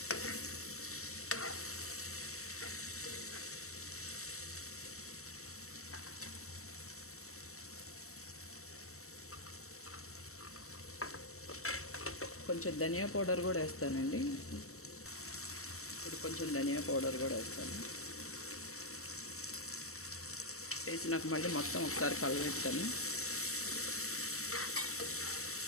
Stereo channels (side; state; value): right; late; 0.64 ms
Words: కొంచెం ధనియా పౌడర్ కూడా వేస్తానండి. ఇప్పుడు కొంచెం ధనియా పౌడర్ కూడా వేస్తాను. వేసి నాకు మళ్ళీ మొత్తం ఒకసారి కలబెడతాను.